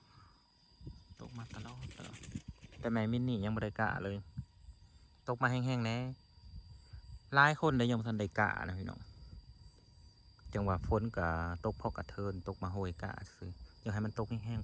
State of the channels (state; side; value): identical; both; correlation 1.00